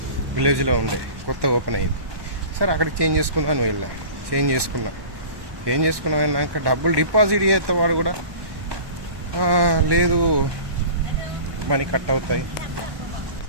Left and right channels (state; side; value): late; left; 1.1 ms